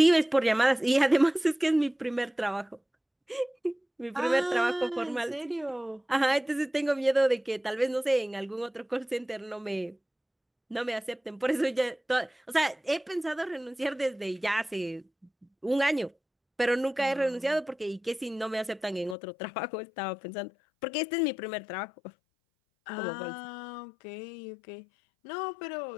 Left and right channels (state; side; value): drops out; right; at 19.2 s